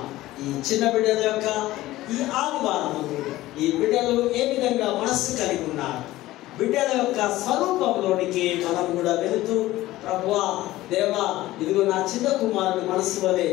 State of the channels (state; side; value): quieter; right; 16.6 dB